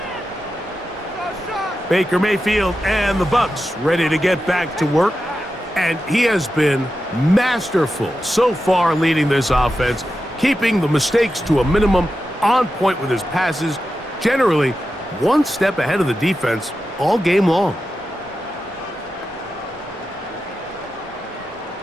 Baker Mayfield and the Bucs ready to get back to work. And he has been masterful so far leading this offense, keeping the mistakes to a minimum, on point with his passes, generally one step ahead of the defense all game long.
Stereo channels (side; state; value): both; normal; correlation 0.90